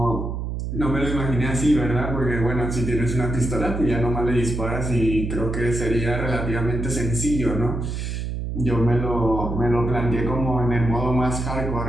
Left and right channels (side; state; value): right; noise; hum, 4 dB below the sound